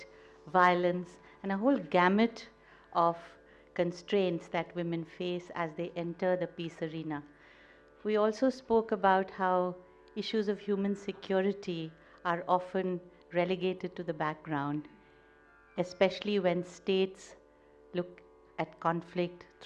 violence, and a whole gamut of constraints that women face as they enter the peace arena. We also spoke about how issues of human security are often relegated to the background, especially when states look at conflict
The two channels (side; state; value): both; identical; correlation 1.00